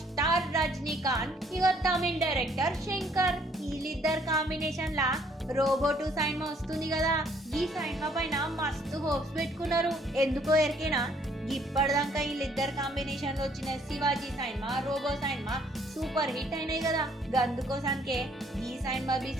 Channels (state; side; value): normal; both; correlation 0.64